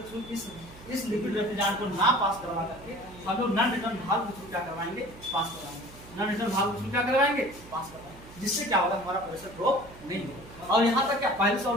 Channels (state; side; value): noise; right; hum, 19 dB below the sound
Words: थ्रू इस लिक्विड रेफ्रिजरेंट को ना पास करवा करके हम लोग नॉन रिटर्न भाग के थ्रू क्या करवाएंगे, पास करवाएंगे, नॉन रिटर्न भाग के थ्रू क्या करवाएंगे, पास करवाएंगे, जिससे क्या होगा, हमारा प्रेशर ड्रॉप नहीं होगा। और यहाँ तक क्या पहले से